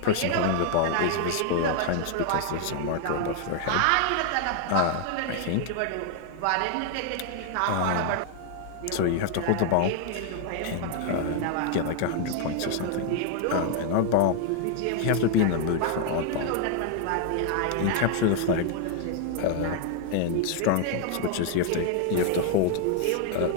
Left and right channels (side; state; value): both; different; correlation 0.00